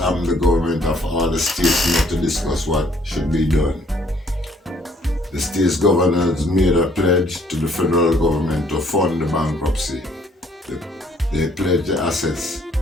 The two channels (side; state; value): both; normal; correlation 0.63